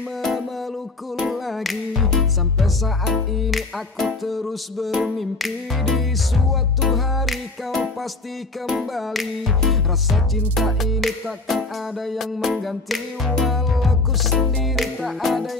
memelukku lagi. Sampai saat ini aku terus bermimpi di suatu hari kau pasti kembali. Rasa cinta ini takkan ada yang mengganti, walau ku sendiri tak ada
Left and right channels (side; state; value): right; quieter; 3.2 dB